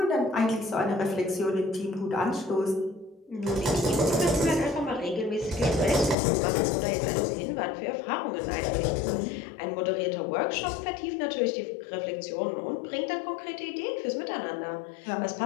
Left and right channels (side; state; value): right; drops out; at 6.2 s